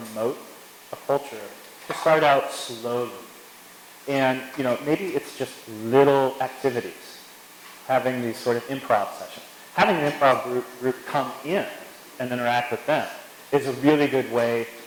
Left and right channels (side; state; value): both; identical; correlation 1.00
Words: promote a culture, to start out slowly. And, maybe it's just little activities, having these sort of improv sessions. Having an improv group come in and interact with them is a really good way